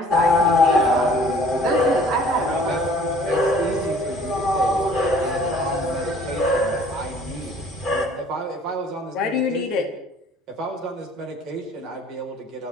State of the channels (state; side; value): normal; both; correlation 0.54